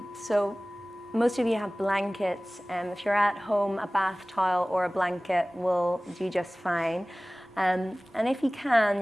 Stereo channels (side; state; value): both; normal; correlation 0.98